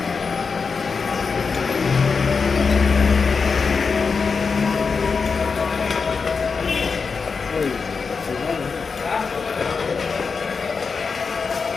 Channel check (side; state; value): right; quieter; 5.1 dB